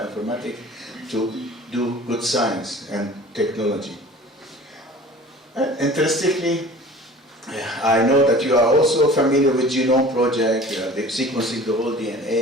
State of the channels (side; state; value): both; normal; correlation 0.43